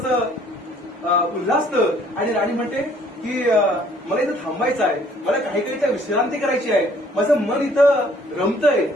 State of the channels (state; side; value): normal; both; correlation 0.59